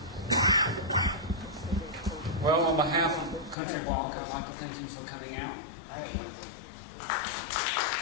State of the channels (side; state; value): right; drops out; at 3.6 s